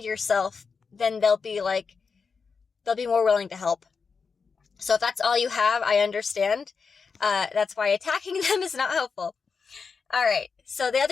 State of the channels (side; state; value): right; quieter; 5.3 dB